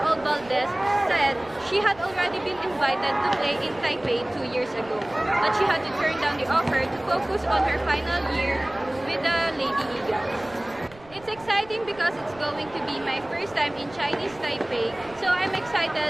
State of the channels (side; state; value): right; noise; rumble, 23 dB below the sound